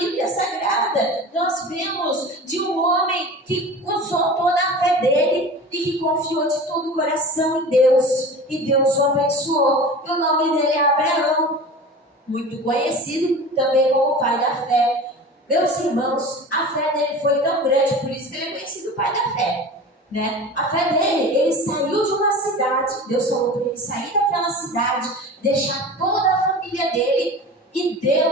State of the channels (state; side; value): normal; both; correlation 0.35